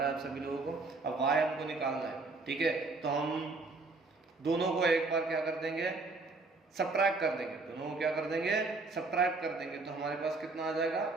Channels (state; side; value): quieter; left; 3.6 dB